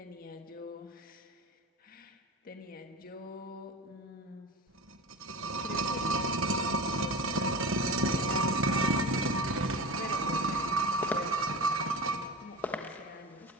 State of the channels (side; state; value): both; normal; correlation 0.29